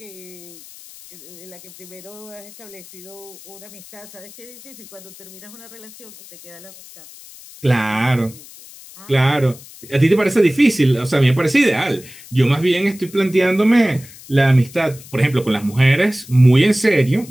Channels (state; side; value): noise; left; hiss, 19 dB below the sound